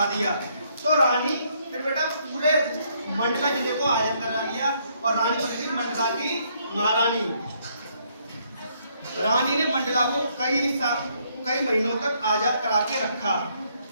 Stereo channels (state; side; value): inverted; both; correlation -0.70